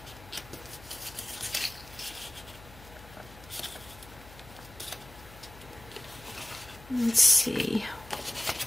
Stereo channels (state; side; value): noise; left; hum, 19 dB below the sound